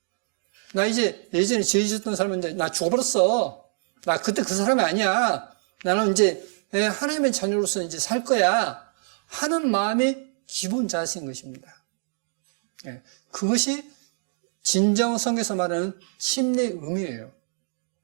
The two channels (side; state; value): left; silent; digital silence